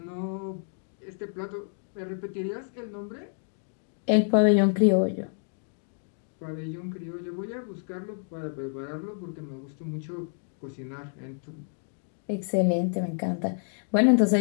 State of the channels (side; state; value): right; silent; 59 dB below the other